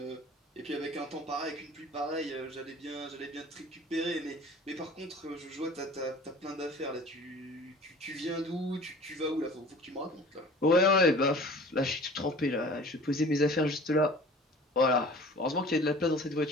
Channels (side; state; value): both; normal; correlation 0.45